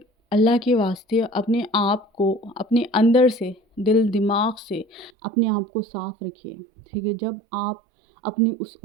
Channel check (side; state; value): left; drops out; at 5.1 s